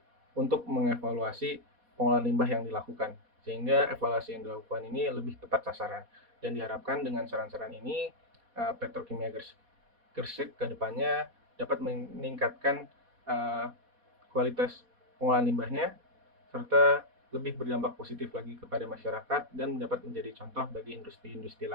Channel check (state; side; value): late; left; 4.2 ms